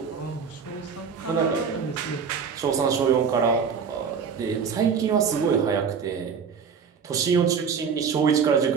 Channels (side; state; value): left; quieter; 6.3 dB